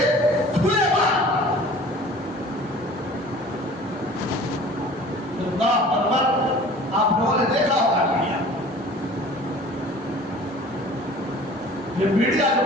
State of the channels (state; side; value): normal; both; correlation 0.45